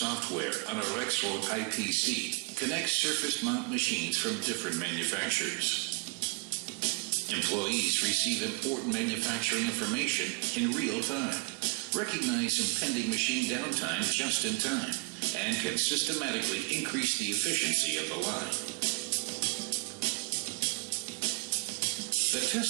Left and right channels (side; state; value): left; quieter; 31.6 dB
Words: on a Rexroad IPC connects surface mount machines from different manufacturers. Employees receive important manufacturing information in real time, recognize impending machine downtime just in time, and can systematically increase the efficiency of the line. The